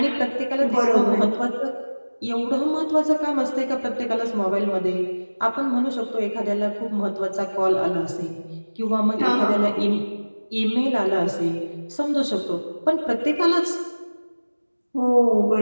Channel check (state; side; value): inverted; both; correlation -1.00